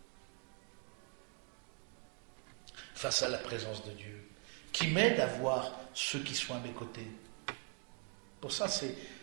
Face à la présence de Dieu, qui m'aide à voir ceux qui sont à mes côtés. Pour ça,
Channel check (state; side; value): quieter; left; 37.2 dB